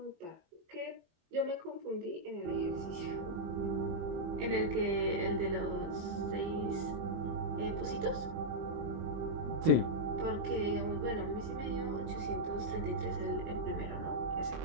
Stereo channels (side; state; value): left; late; 25 ms